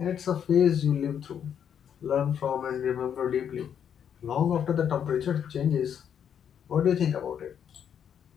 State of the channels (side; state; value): right; quieter; 8.5 dB